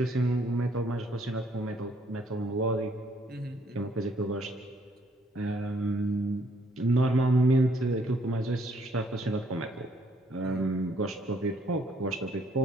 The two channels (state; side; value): normal; both; correlation 0.67